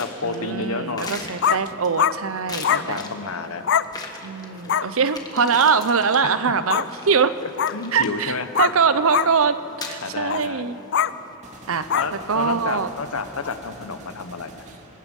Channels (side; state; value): both; normal; correlation -0.19